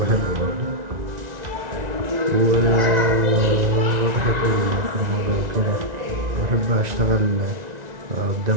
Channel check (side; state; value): left; late; 1.9 ms